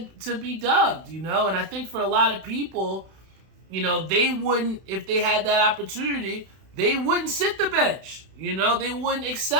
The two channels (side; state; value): left; late; 31 ms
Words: to be dubbed, And I think for a lot of people, they wouldn't, if they had that opportunity, they wouldn't sit the bench. They wouldn't